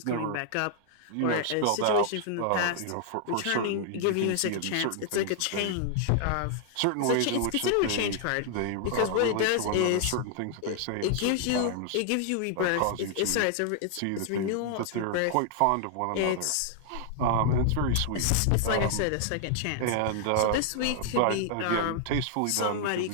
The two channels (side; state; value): both; different; correlation 0.00